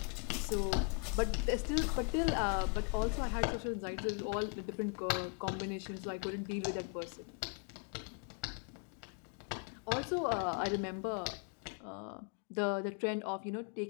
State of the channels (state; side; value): quieter; right; 35.1 dB